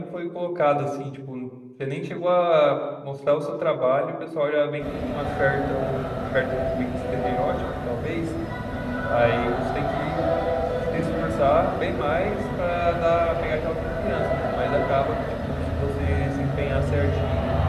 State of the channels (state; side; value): identical; both; correlation 1.00